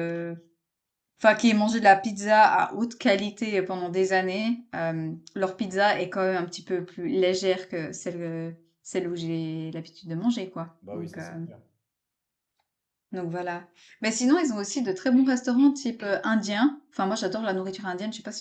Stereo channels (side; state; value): both; identical; correlation 1.00